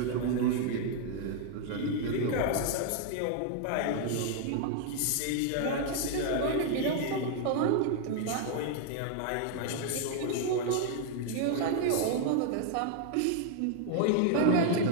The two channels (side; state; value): both; different; correlation 0.00